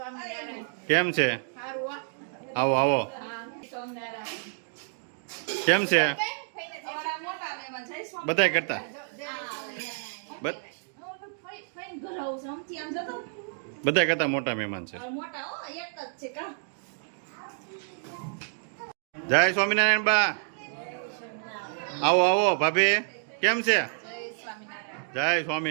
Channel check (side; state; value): left; silent; digital silence